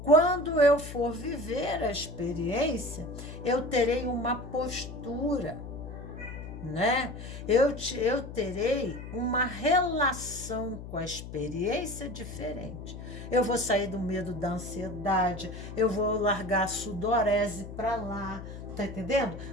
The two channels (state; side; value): noise; left; hum, 11 dB below the sound